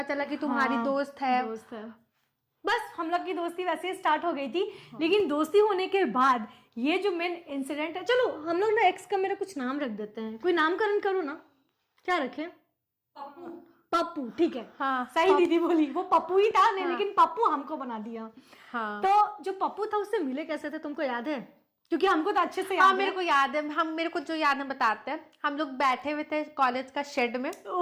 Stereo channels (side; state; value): both; identical; correlation 1.00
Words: चला कि तुम्हारी दोस्त है। बस हम लोग की दोस्ती वैसे स्टार्ट हो गई थी। लेकिन दोस्ती होने के बाद ये जो मेन इंसिडेंट है, चलो हम लोग ना एक्स का मेरा कुछ नाम रख देते हैं, कोई नामकरण करो ना, क्या रखें? पप्पू, ठीक है। हाँ, सही दीदी बोली, वो पप्पू ही था। नहीं, लेकिन पप्पू हमको बना दिया। हाँ। तो जो पप्पू था उससे मिले कैसे थे, तुमको याद है? क्योंकि हमको तो अच्छे से याद है। मेरे को याद है, मेरे को जो याद है बताते हैं। हम लोग बैठे हुए थे कॉलेज का शेड में।